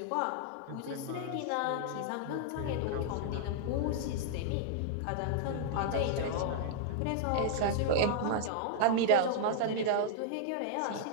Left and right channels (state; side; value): different; both; correlation -0.01